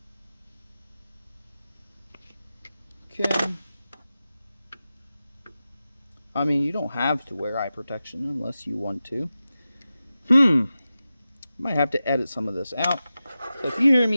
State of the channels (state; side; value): inverted; both; correlation -0.93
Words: Okay. I mean, you don't have to wear eye protection unless you want to. Might have to edit some of this out. So if you hear